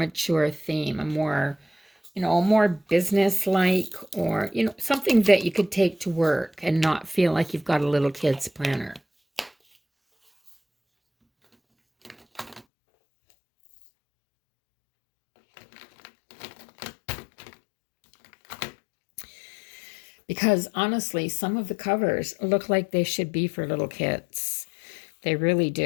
theme, a more, more business-like, or, something that you could take to work and not feel like you've got a little kid's planner. Because honestly, some of the covers look like they should be for little kids. They really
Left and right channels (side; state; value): right; drops out; at 12.7 s